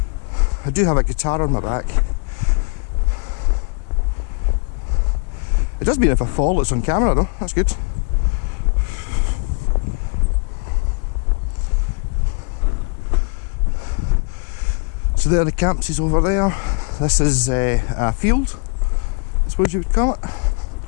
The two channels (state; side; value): quieter; right; 33.6 dB